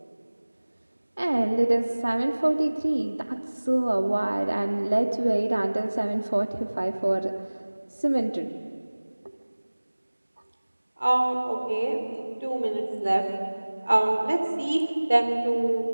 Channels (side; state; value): both; inverted; correlation -1.00